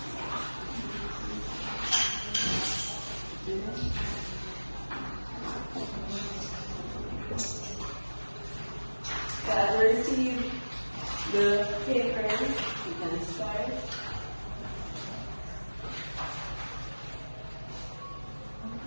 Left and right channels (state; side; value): inverted; both; correlation -1.00